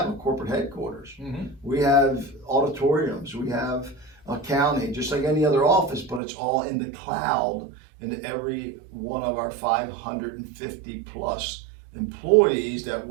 a corporate headquarters. Mm-hmm. We have auditoriums. We have accounting, just like any other office, but it's all in the cloud. And every one of our 550 plus employees that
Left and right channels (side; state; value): left; drops out; at 6.2 s